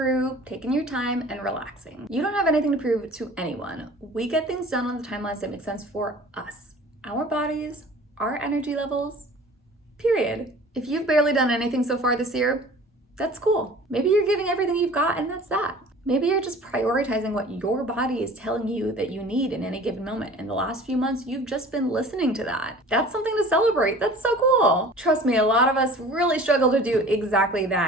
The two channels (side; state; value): both; normal; correlation 0.45